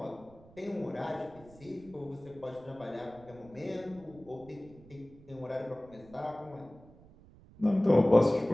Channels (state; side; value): noise; right; rumble, 23 dB below the sound